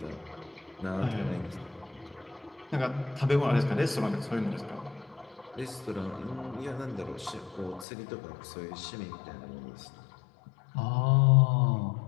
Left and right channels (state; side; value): drops out; right; at 7.9 s